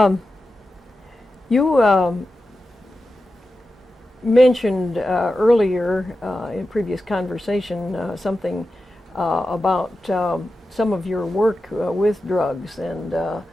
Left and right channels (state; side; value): normal; both; correlation 0.92